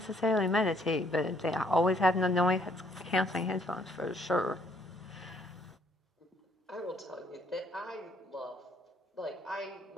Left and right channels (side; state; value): both; normal; correlation 0.66